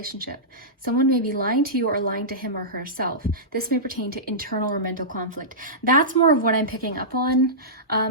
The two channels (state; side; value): normal; both; correlation -0.17